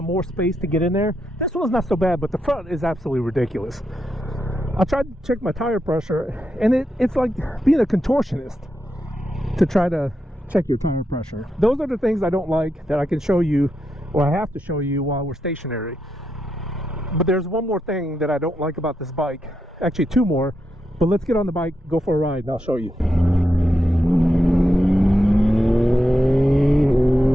more space to get in there? This one's not so bad, but the front is absolutely ridiculous. I tried to check my tire pressure, and it's like being a contortionist to try to check your tire pressure. Those are the things I don't like that I can show you, or I have to show you while we're stationary. But there's one more thing that I don't like about this bike. Actually 2 more, but let's get on the bike, go for a ride, and I'll show you.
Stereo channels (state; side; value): normal; both; correlation 0.85